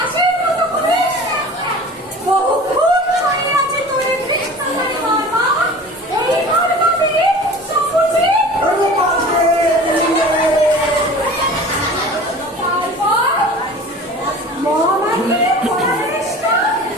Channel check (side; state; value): both; normal; correlation 0.40